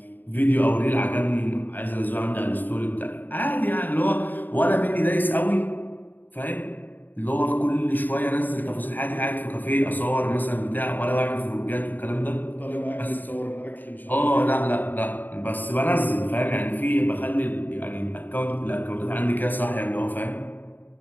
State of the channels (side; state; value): right; late; 0.088 ms